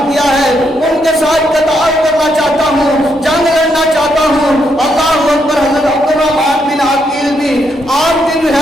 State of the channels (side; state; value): both; normal; correlation 0.77